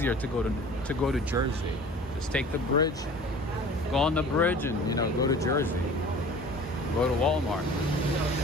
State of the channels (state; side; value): normal; both; correlation 0.44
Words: to go to Jersey. Just take the bridge, go on the bridge, and, you know, go to Jersey. Go to Walmart.